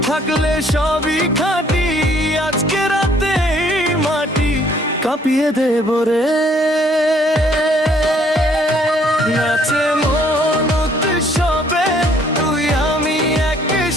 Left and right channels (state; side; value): normal; both; correlation 0.63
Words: থাকলে সবই খাঁটি। আজকে রাতে এই মাটি কাঁপিয়ে দেব রে। নাচে মন উৎসবে, তুই আমি